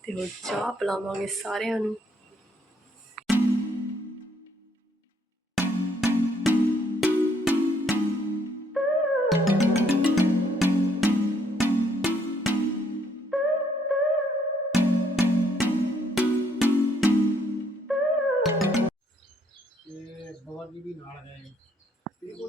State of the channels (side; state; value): both; normal; correlation 0.68